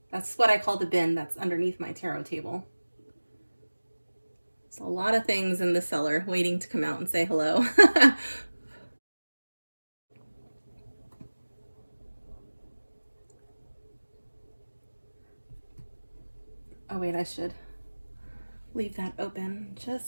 That's what I call the bin that's underneath my tarot table. There's a lot of things in the cellar waiting to come out and say hello. Oh wait, I should leave that open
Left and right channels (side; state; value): both; inverted; correlation -1.00